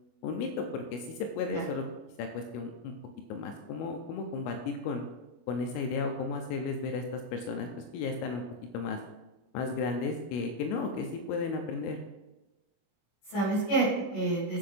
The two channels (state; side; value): late; right; 25 ms